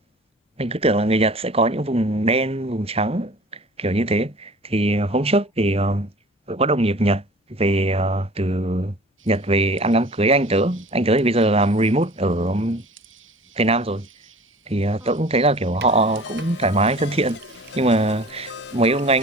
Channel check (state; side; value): normal; both; correlation 0.44